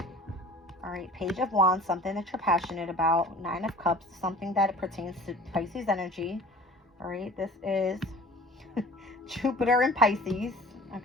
All right, Page of Wands, something that you're passionate about. Nine of Cups, something that pertains to Pisces energy. All right, this is Jupiter in Pisces,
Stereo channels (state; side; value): normal; both; correlation 0.45